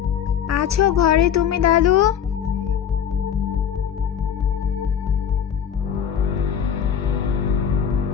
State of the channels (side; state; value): right; quieter; 8.3 dB